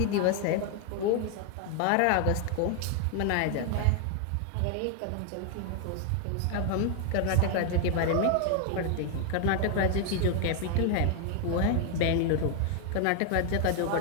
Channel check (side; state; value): both; different; correlation 0.00